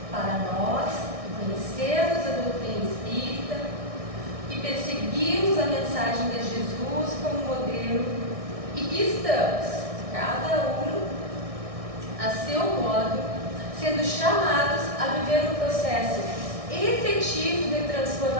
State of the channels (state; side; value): late; left; 1.6 ms